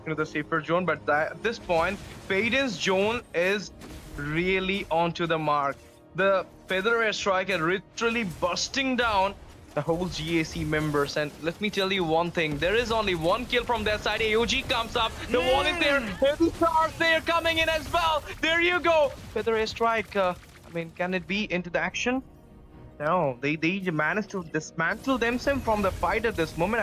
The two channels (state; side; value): identical; both; correlation 1.00